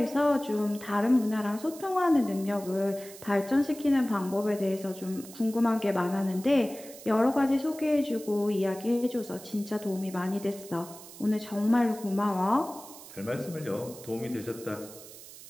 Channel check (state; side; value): noise; right; hiss, 17 dB below the sound